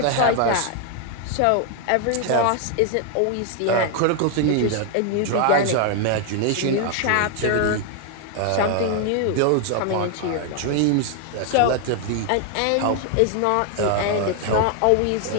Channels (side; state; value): both; different; correlation 0.00